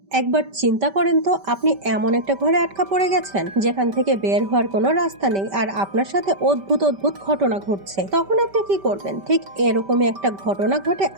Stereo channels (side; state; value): left; late; 5.1 ms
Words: একবার চিন্তা করেন তো, আপনি এমন একটা ঘরে আটকা পড়ে গেছেন যেখান থেকে বের হওয়ার কোনো রাস্তা নেই, আর আপনার সাথে অদ্ভুত অদ্ভুত ঘটনা ঘটছে। তখন আপনি কি করবেন? ঠিক এরকমই একটা ঘটনা ঘটে